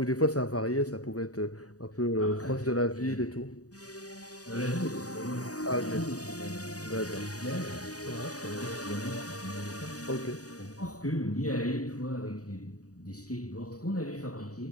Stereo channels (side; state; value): right; late; 0.67 ms